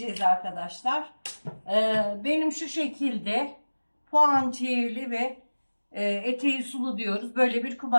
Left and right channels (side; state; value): both; inverted; correlation -1.00